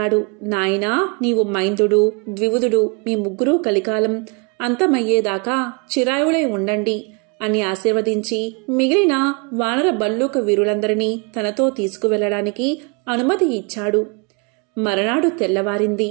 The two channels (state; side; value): quieter; left; 33.9 dB